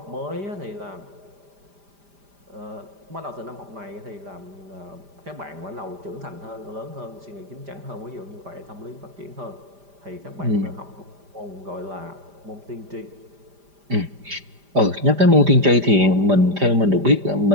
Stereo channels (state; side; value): late; left; 5.0 ms